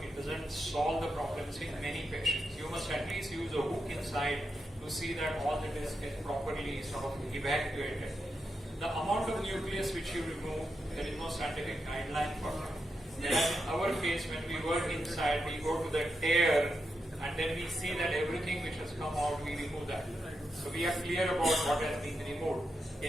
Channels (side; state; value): both; normal; correlation 0.85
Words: It doesn't solve the problems in many patients. You must at least use a hook inside to see that all the disc is properly sort of evacuated. The amount of nucleus which you remove, there is no scientific guideline for that. Whereas in our case, when we work inside, we go to the tear and then we see that everything which has come out, we remove that. So we are clear about what has been removed.